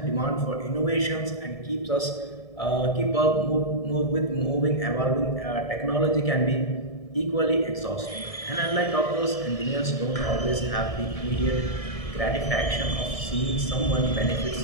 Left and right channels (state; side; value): late; right; 1.7 ms